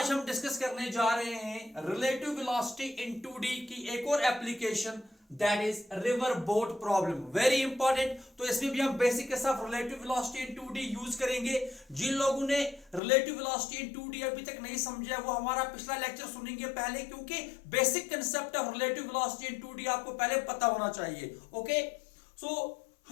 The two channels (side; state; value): right; drops out; at 13.0 s